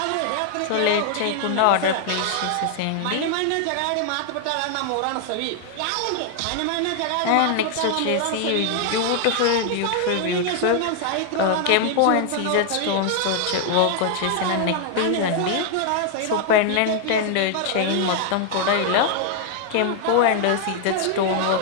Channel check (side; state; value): both; different; correlation 0.00